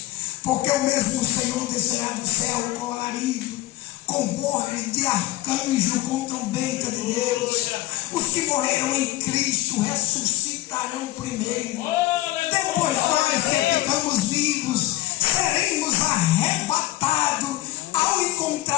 Porque o mesmo Senhor descerá do céu com alarido, com voz de arcanjo, com trombeta de Deus. Os que morreram em Cristo ressuscitarão primeiro. Depois nós que ficamos vivos seremos arrebatados ao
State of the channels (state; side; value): quieter; right; 16.7 dB